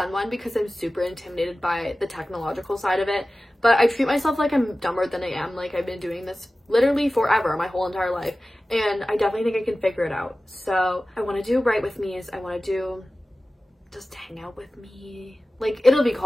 one because I'm super intimidated by the technological side of it, but I treat myself like I'm dumber than I am. Like, I've been doing this literally forever, my whole entire life, and I definitely think I can figure it out. So I want to do Write With Me's. I want to do just hang out with me. Like, it'll be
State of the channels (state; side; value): normal; both; correlation 0.96